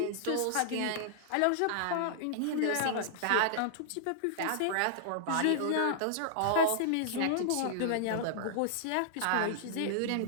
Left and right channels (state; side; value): different; both; correlation -0.01